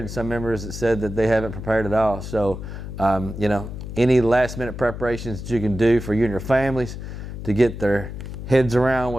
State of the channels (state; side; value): noise; left; hum, 9 dB below the sound